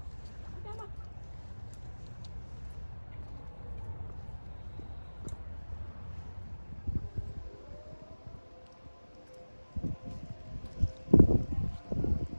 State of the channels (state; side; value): inverted; both; correlation -1.00